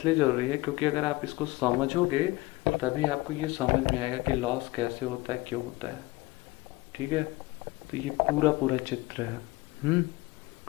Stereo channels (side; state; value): right; quieter; 21.0 dB